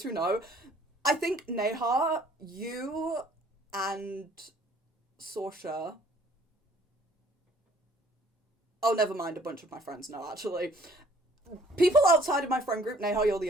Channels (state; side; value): normal; both; correlation 0.57